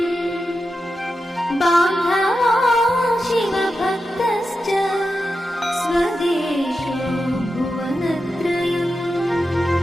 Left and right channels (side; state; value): both; normal; correlation 0.90